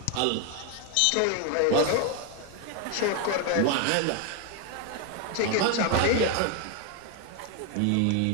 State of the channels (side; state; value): both; different; correlation 0.02